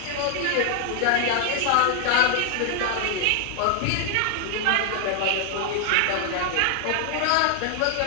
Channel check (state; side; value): different; both; correlation 0.00